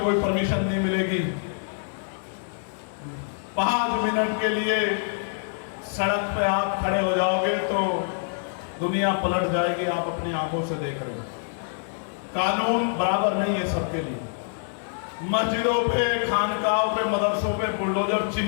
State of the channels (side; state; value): right; silent; digital silence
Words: परमिशन नहीं मिलेगी। 5 मिनट के लिए सड़क पे आप खड़े हो जाओगे तो दुनिया पलट जाएगी। आप अपनी आंखों से देख रहे हैं। कानून बराबर नहीं है सबके लिए। मस्जिदों पे, खानकाहों पे, मदरसों पे बुलडोजर